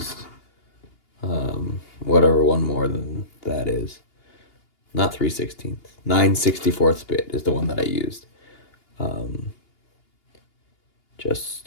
whatever one more than that is. Not 3/16. 9/64 bit is the one that I used. Um,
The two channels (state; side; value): late; right; 2.8 ms